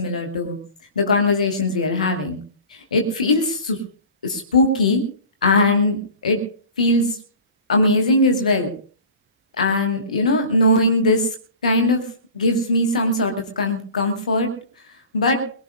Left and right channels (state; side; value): inverted; both; correlation -0.39